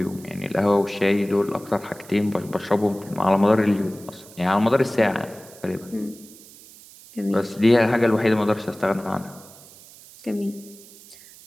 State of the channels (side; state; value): right; noise; hiss, 21 dB below the sound